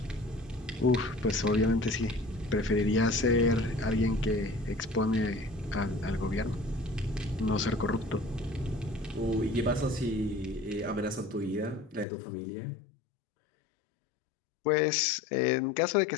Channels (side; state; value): right; drops out; at 12.1 s